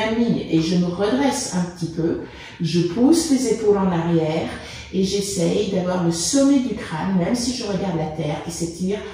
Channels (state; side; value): identical; both; correlation 1.00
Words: ligne et je me redresse un petit peu. Je pousse les épaules en arrière et j'essaye d'avoir le sommet du crâne, même si je regarde la terre, qui s'étire